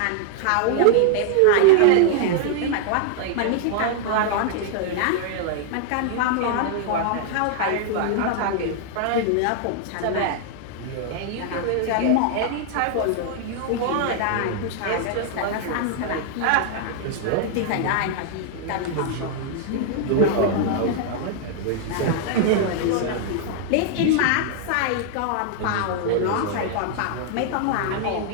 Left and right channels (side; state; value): both; different; correlation 0.00